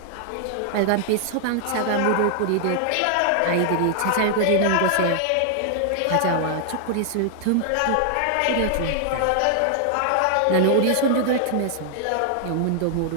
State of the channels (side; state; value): both; different; correlation 0.00